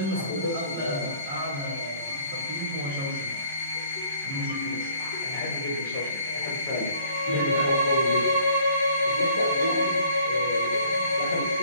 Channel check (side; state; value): both; inverted; correlation -0.57